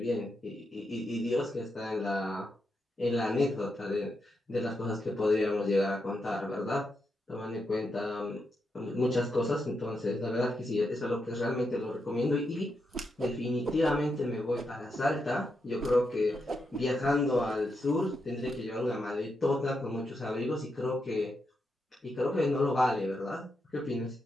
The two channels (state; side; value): normal; both; correlation 0.84